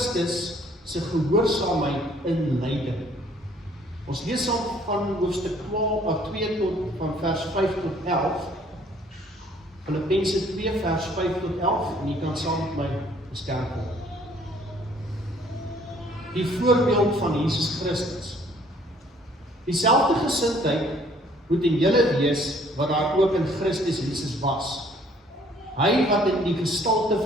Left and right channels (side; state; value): both; normal; correlation 0.60